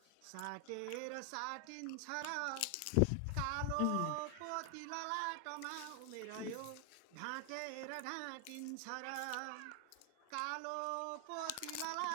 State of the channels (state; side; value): different; both; correlation 0.00